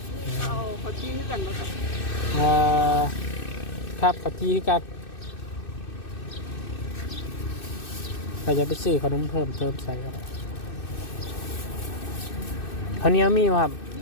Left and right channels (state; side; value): late; right; 2.6 ms